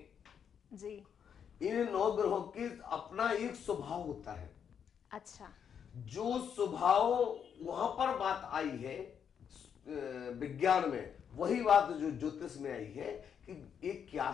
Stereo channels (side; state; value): right; quieter; 7.8 dB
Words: जी, इन 9 ग्रहों के अपना एक स्वभाव होता है। अच्छा, जो स्वभाव वहां पर बात आई है विज्ञान में, वही बात जो ज्योतिष में आई है कि ये क्या